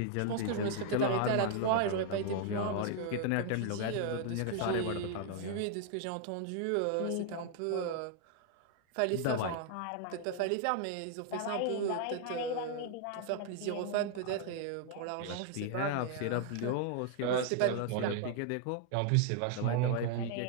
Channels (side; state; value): both; different; correlation 0.00